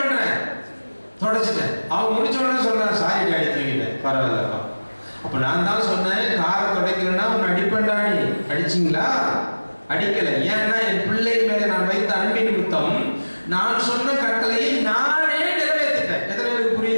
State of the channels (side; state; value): both; inverted; correlation -1.00